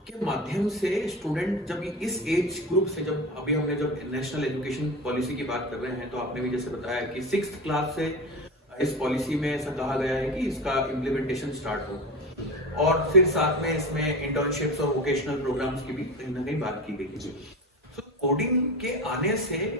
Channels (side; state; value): both; normal; correlation 0.27